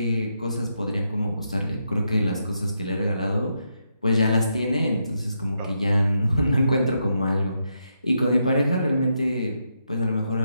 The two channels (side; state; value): both; inverted; correlation -0.81